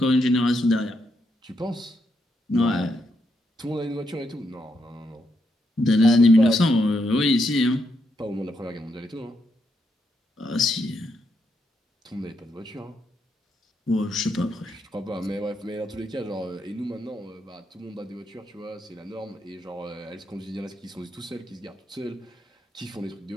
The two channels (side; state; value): both; normal; correlation 0.79